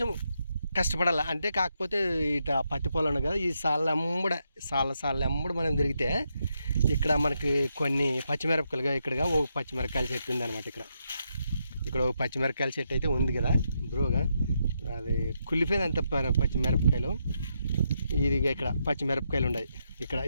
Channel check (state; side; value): inverted; both; correlation -0.81